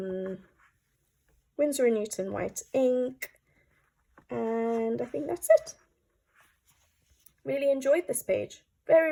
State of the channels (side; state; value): both; identical; correlation 1.00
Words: Winsor & Newton white ink, and I think that's it. Really enjoyed this page.